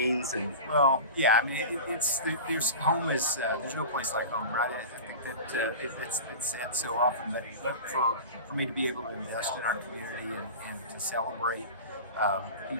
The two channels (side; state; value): both; inverted; correlation -0.31